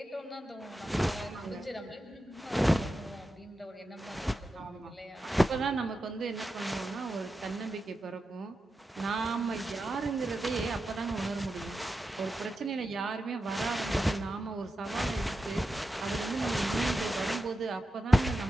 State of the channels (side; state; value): both; normal; correlation 0.90